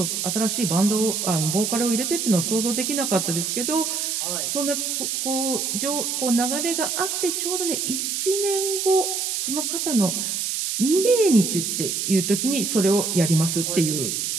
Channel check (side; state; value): right; noise; hiss, 1 dB below the sound